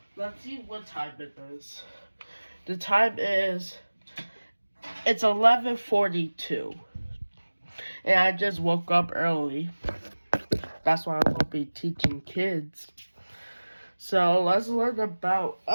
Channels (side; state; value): both; inverted; correlation -1.00